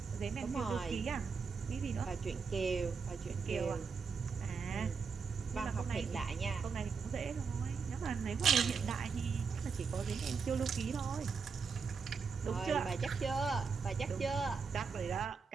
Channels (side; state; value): left; quieter; 5.4 dB